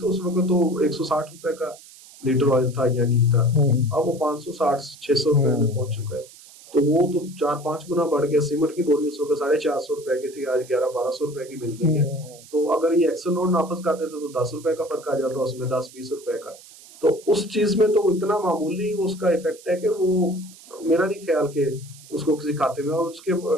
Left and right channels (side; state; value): right; noise; hiss, 21 dB below the sound